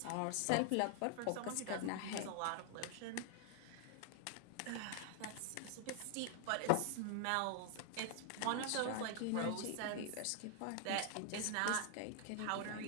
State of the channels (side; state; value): both; different; correlation 0.00